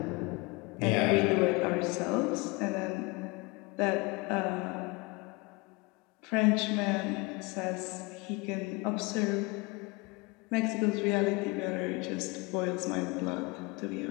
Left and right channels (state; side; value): quieter; right; 26.6 dB